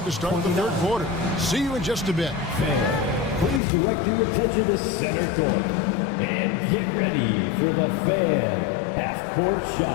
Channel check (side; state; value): right; drops out; at 3.6 s